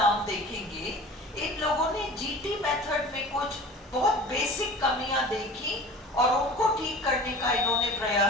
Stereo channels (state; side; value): normal; both; correlation 0.40